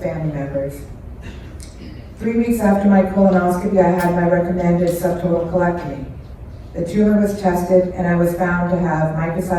family members. 3 weeks after my colonoscopy, I had my recommended subtotal colectomy. The tumor was tested, and I was found to have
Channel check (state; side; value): identical; both; correlation 1.00